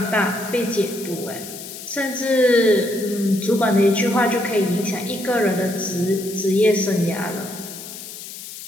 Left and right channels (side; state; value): left; noise; hiss, 12 dB below the sound